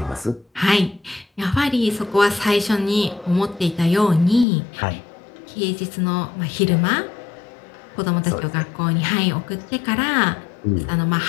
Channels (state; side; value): drops out; right; at 4.5 s